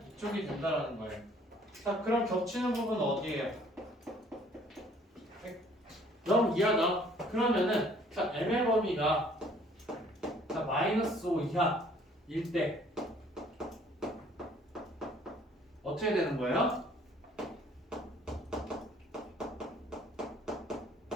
이쪽이 된다라는 거예요. 자, 그럼 겹치는 부분은 어디예요? 0 이하다. 그러면은 자, m의 범위가 자, 마이너스 5 이하일 때 어떻게 되는 거예요?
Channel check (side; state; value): both; normal; correlation 0.58